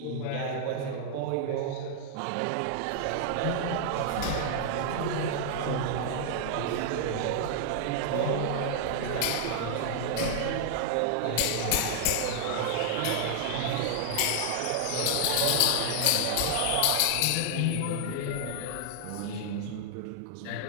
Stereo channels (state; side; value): different; both; correlation 0.00